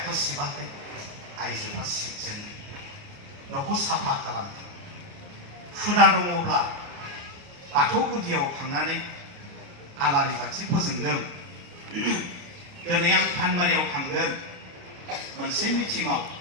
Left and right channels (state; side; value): late; left; 29 ms